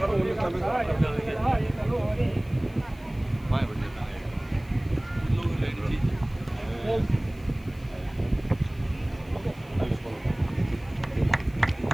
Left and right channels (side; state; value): left; noise; hiss, 27 dB below the sound